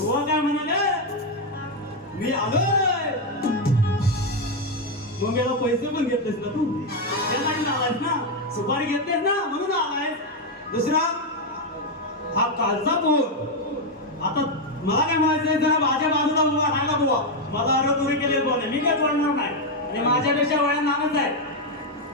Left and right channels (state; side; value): normal; both; correlation 0.04